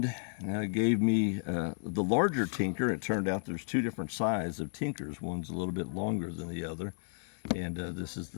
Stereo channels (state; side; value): silent; right; 56 dB below the other